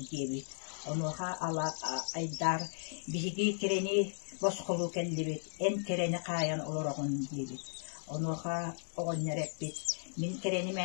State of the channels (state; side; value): silent; right; digital silence